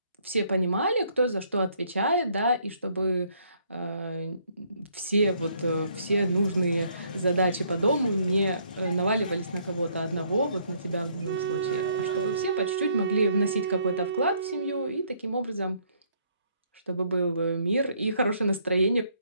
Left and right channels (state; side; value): inverted; both; correlation -0.67